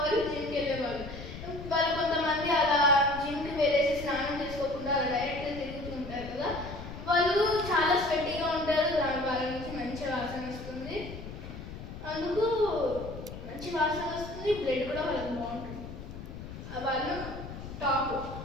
జిమ్కి వెళ్ళేవాళ్ళు. వాళ్ళు కొంతమంది అలా జిమ్కి వెళ్ళేసి స్నానం చేసుకోకుండా అలా డైరెక్ట్గా తిరుగుతూ ఉంటారు కదా, వాళ్ళు చాలా స్వెట్టీగా ఉంటారు. వాళ్ళ నుంచి మంచి వాసన వస్తుంది. అందుకు మంచి వాసన వస్తుంది, బ్లడ్ కూడా వాళ్ళకి బాగుంటుంది. వాళ్ళు టాప్.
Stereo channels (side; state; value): left; noise; rumble, 11 dB below the sound